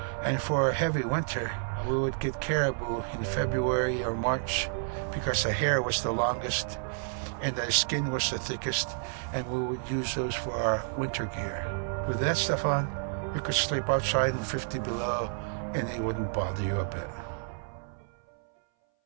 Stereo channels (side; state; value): left; silent; 58 dB below the other